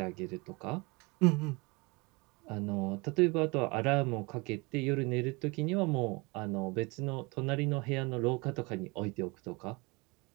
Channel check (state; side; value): quieter; left; 26.9 dB